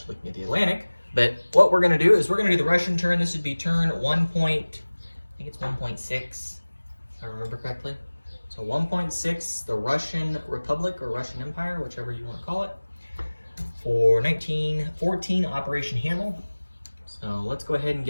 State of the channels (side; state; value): both; inverted; correlation -1.00